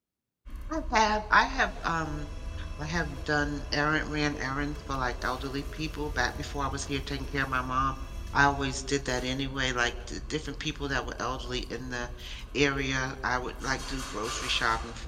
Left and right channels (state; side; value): identical; both; correlation 1.00